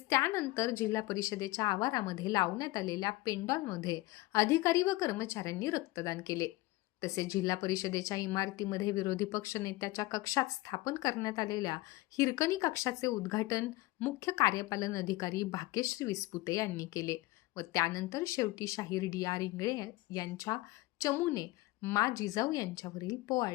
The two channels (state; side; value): quieter; right; 19.8 dB